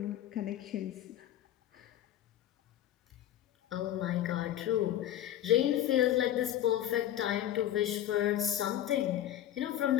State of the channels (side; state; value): right; quieter; 11.9 dB